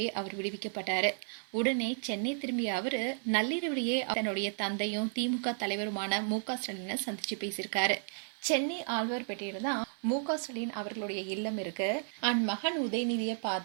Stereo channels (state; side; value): silent; left; 56 dB below the other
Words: அவர் விடுவிக்கப்பட்டாரு. உடனே சென்னை திரும்பிய அவரு நள்ளிரவிலேயே தன்னுடைய தந்தையும் திமுக தலைவருமான மு.க.ஸ்டாலினை சந்திச்சு பேசியிருக்காரு. சென்னை ஆழ்வார்பேட்டையில தான் மு.க.ஸ்டாலின் அவர்களுடைய இல்லம் இருக்கு. மகன் உதயநிதியை